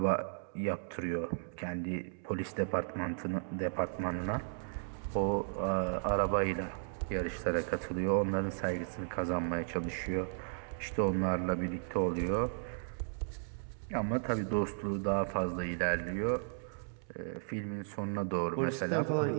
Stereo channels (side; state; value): left; silent; 54 dB below the other